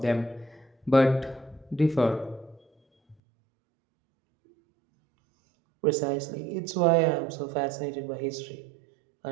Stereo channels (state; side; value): drops out; left; at 3.2 s